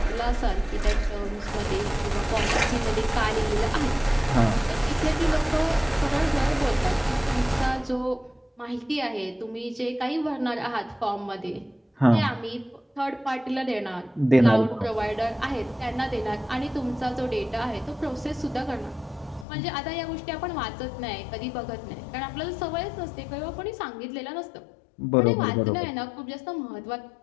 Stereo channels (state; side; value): drops out; right; at 19.5 s